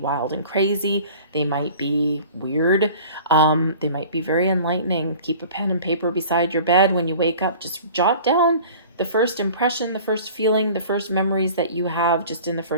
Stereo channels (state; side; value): inverted; both; correlation -0.44